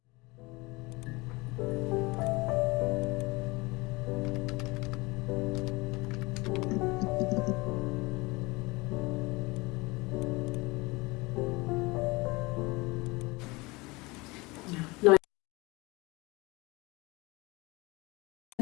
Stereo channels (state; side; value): quieter; right; 24.1 dB